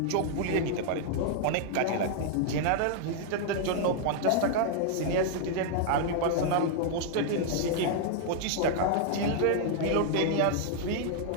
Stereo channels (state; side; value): different; both; correlation 0.00